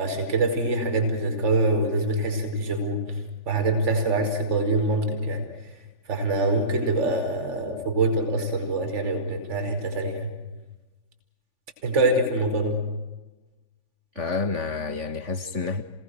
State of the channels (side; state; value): left; late; 3.5 ms